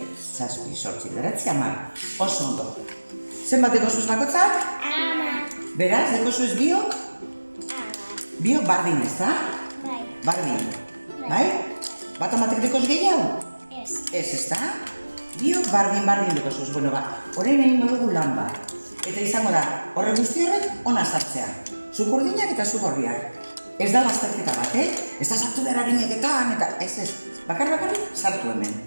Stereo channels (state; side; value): inverted; both; correlation -1.00